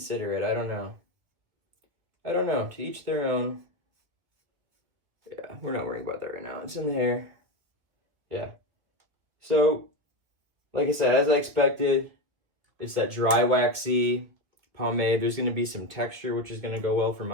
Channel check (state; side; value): late; left; 2.4 ms